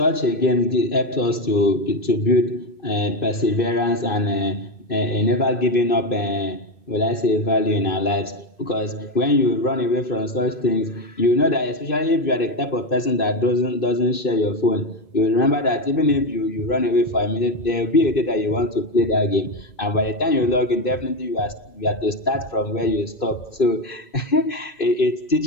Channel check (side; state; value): right; late; 2.6 ms